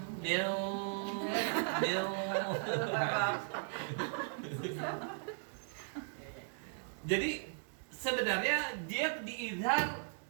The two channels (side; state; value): left; silent; digital silence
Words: Mil. Jadi sebenarnya dia diizhar